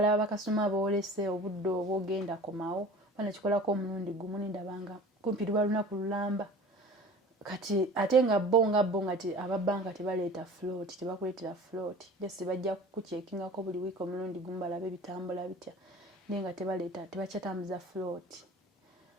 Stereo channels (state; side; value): normal; both; correlation 0.41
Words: bakasoma boolese obudde obwo ogenda komawo banakikolako omulundi gumu nindabanga kumpi luba lunaku lulamba. Kati ate nga bo nga ababanka tebaleeta float, tebakuleetera float. Just bajja kukuchekingako buli wiiki omulundi gumu balabe bitambula bitya. Naye nga tebakyatambuza float.